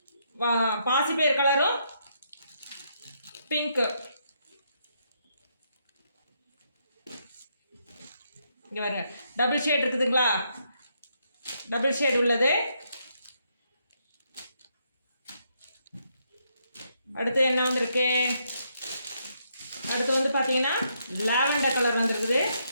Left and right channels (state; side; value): inverted; both; correlation -0.76